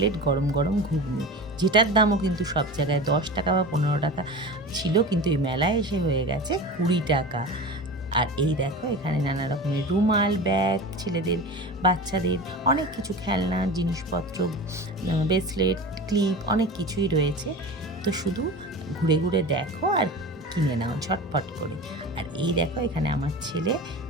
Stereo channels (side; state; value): both; normal; correlation 0.32